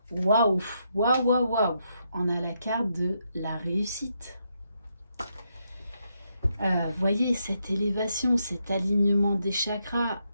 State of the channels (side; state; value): both; inverted; correlation -0.79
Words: Waouh, waouh, waouh, waouh. On a la carte de la réussite. Voyez cette élévation, cet alignement des chakras.